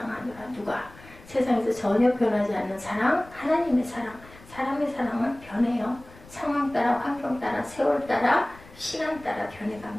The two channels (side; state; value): left; noise; rumble, 21 dB below the sound